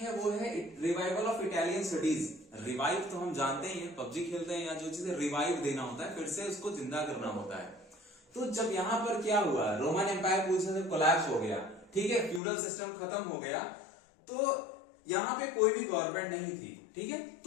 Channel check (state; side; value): drops out; right; at 12.4 s